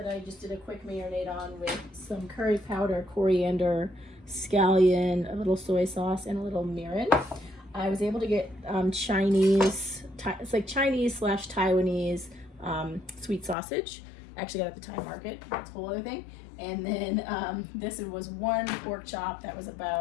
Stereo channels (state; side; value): drops out; right; at 13.6 s